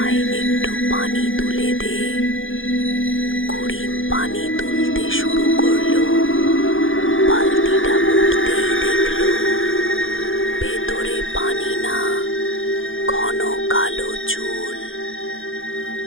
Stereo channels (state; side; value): late; right; 0.58 ms